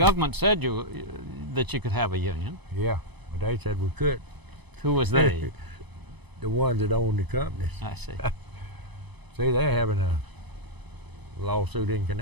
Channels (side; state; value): left; late; 1.0 ms